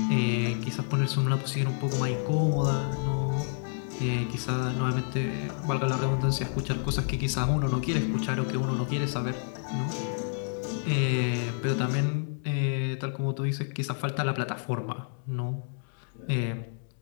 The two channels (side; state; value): right; silent; digital silence